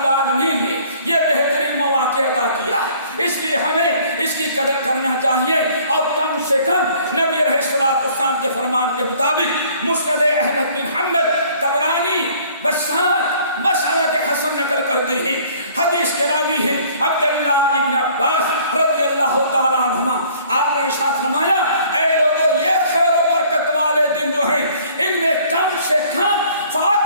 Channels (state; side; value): inverted; both; correlation -0.55